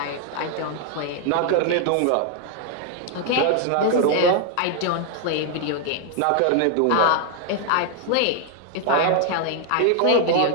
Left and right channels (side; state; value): both; different; correlation 0.00